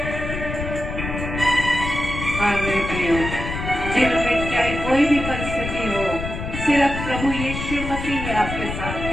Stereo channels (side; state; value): left; noise; rumble, 6 dB below the sound